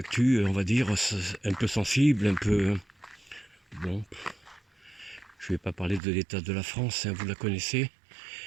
on va dire, un peu sensible, un peu... Bon, je vais pas parler de l'état de la France, hein, vous la connaissez.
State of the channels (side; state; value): left; drops out; at 6.0 s